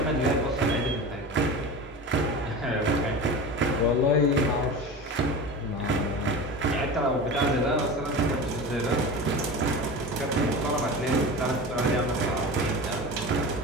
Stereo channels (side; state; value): both; normal; correlation 0.30